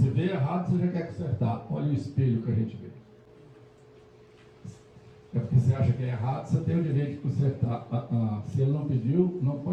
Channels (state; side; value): identical; both; correlation 1.00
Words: vê errado, você já quer consertar. Olha o espelho que a gente vê. É porque você acha que é errado, você tem o direito de consertar. Se ele não pediu, não